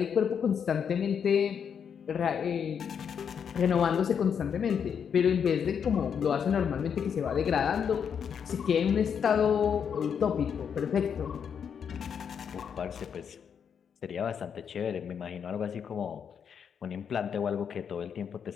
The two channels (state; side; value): quieter; right; 7.4 dB